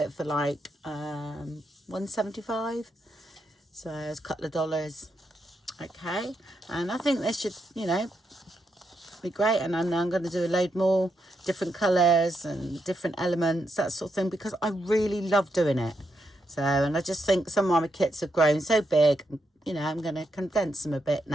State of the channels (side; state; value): both; normal; correlation 0.82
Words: for like $1.75. So it's a couple of dollars. Okay, and I think this should, you know, be great. And I'm going to do a load more different colours and different elements, that sort of thing, because I really love doing it. So, and I just think some of my kits have grown so big, you know, I'm going to condense them a bit